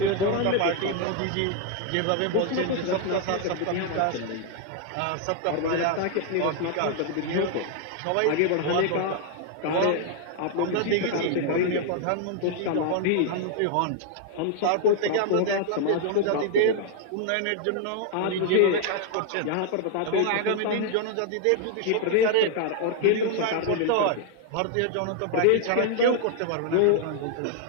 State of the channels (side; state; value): both; different; correlation 0.00